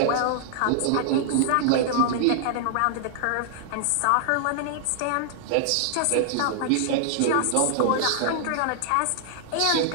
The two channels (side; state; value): both; different; correlation -0.01